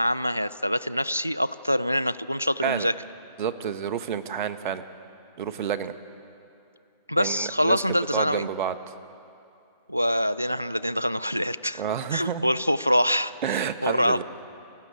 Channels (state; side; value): inverted; both; correlation -0.76